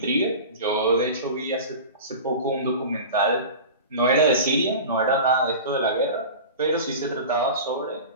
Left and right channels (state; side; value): inverted; both; correlation -0.33